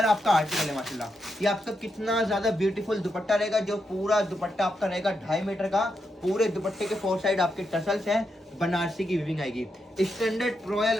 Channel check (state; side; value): normal; both; correlation 0.83